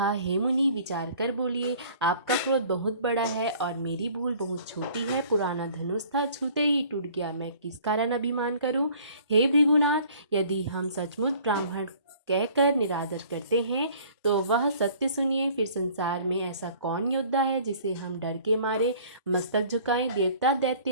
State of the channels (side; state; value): both; inverted; correlation -0.52